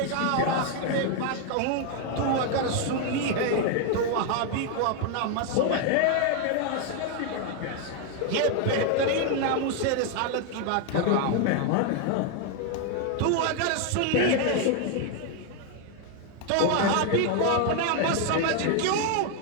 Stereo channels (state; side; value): different; both; correlation 0.01